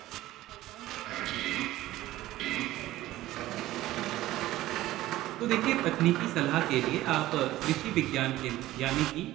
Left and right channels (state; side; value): quieter; left; 15.9 dB